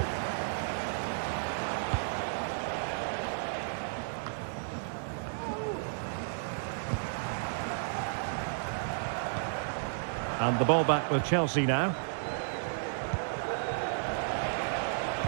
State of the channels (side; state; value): left; silent; digital silence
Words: And the ball back with Chelsea now.